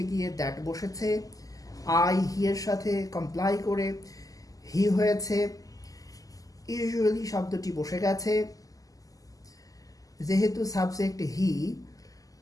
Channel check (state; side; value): late; right; 0.17 ms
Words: গিয়ে দ্যাট বসেছে। আই হি এর সাথে কমপ্লাই করে হি হয়েছে। ইউজুয়ালি শব্দটি বসে গেছে। যেহেতু সাবজেক্ট হি,